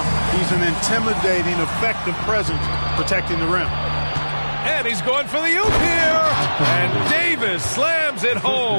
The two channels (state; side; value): inverted; both; correlation -1.00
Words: He's an intimidating, effective presence protecting the rim. And he's going for the oop here. And Davis slams it